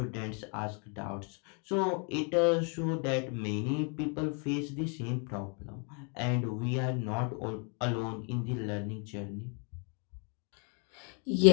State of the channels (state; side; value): quieter; right; 37.5 dB